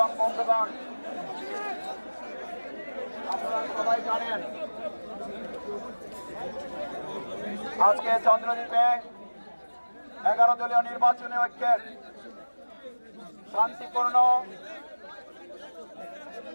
বন্ধুগণ, আপনারা সবাই জানেন আজকে চন্দ্রদ্বীপে 11 দলীয় নির্বাচনী ঐক্যের শান্তিপূর্ণ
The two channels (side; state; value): both; inverted; correlation -1.00